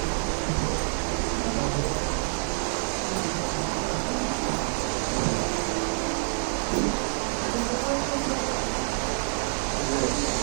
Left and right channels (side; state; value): left; silent; 60 dB below the other